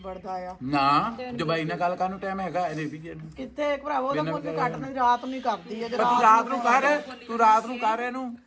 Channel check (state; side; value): identical; both; correlation 1.00